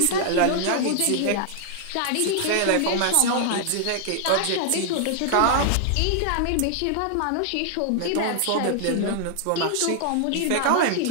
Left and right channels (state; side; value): different; both; correlation 0.00